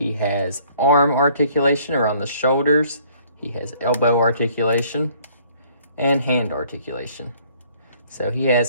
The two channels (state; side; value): inverted; both; correlation -0.59